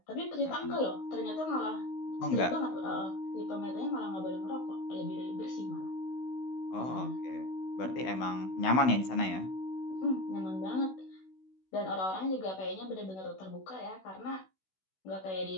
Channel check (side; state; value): right; late; 16 ms